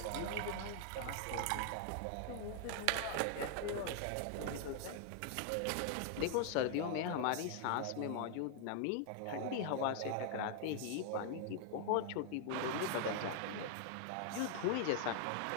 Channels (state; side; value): different; both; correlation 0.00